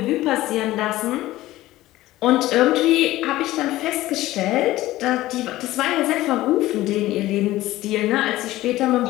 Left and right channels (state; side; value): quieter; right; 16.3 dB